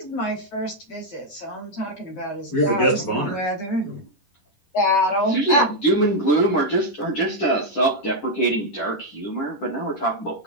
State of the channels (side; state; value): right; late; 10 ms